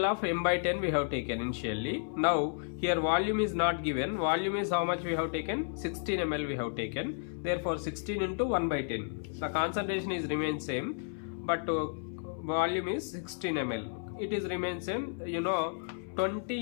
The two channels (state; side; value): silent; right; 56 dB below the other